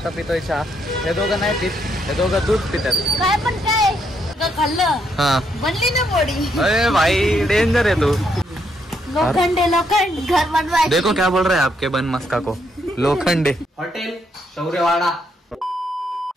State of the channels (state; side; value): normal; both; correlation 0.75